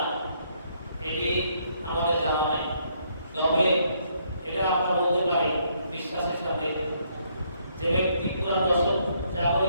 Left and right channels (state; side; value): inverted; both; correlation -0.71